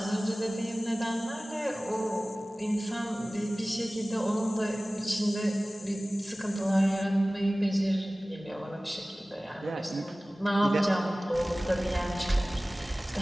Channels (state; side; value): normal; both; correlation 0.98